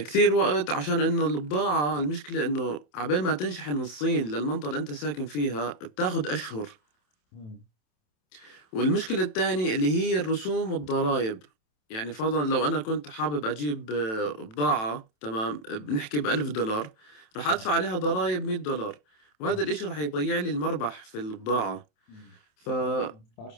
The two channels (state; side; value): late; right; 27 ms